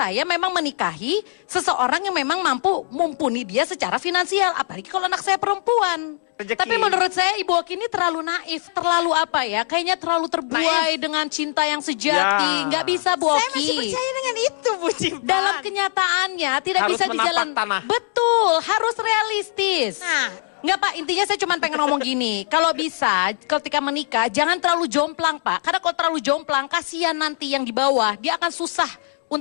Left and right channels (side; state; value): right; silent; digital silence